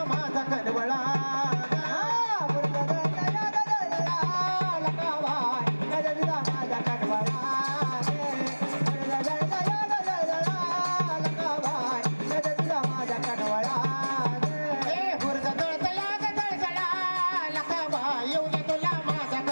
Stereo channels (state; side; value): inverted; both; correlation -1.00